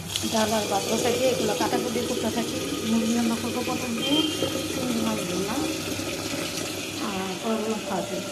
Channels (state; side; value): identical; both; correlation 1.00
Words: ডাল আর ভাত বসাই দিয়ে এগুলো কাটাকুটি করতে থাকি। মুরগি রান্না করবো পটল দিয়ে, চিংড়ি মাছ ভুনা, আর পরগুলো ভাজি।